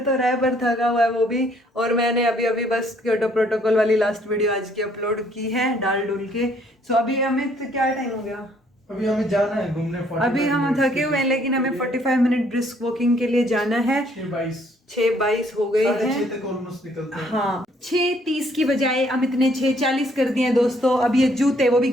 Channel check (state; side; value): normal; both; correlation 0.65